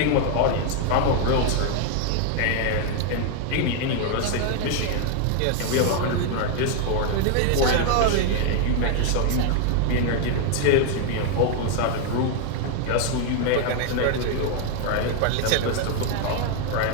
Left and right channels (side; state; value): both; different; correlation 0.00